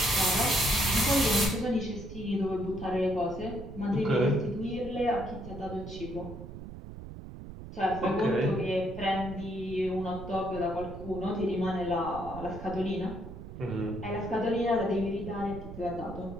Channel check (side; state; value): right; noise; rumble, 11 dB below the sound